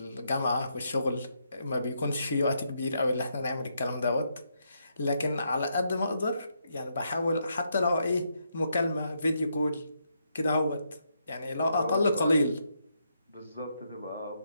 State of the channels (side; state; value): both; inverted; correlation -0.78